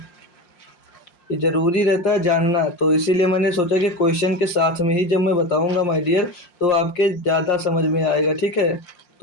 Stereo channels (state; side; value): late; right; 5.6 ms